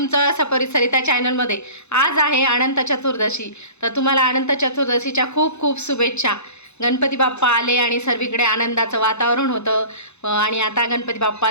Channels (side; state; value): right; late; 0.81 ms